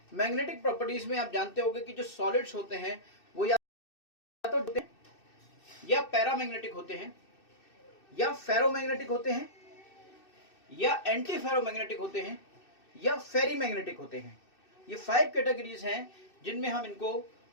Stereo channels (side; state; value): right; late; 2.6 ms